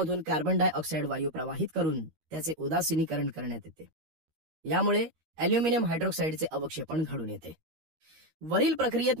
कार्बन डायऑक्साईड वायू प्रवाहित करून त्याचे उदासीनीकरण करण्यात येते. यामुळे अल्युमिनियम हायड्रॉक्साईडचे अवक्षेपण घडून येते. वरील प्रक्रियेत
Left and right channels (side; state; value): left; late; 13 ms